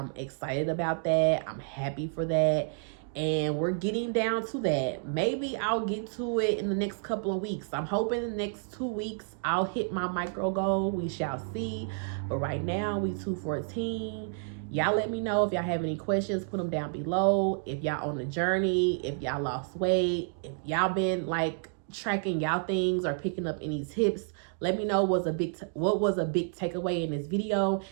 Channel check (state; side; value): silent; left; digital silence